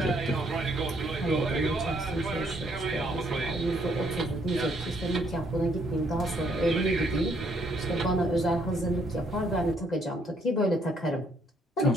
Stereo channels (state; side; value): normal; both; correlation 0.69